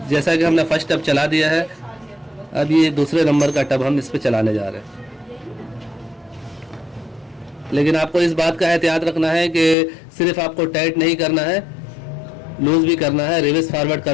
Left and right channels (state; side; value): drops out; right; at 9.8 s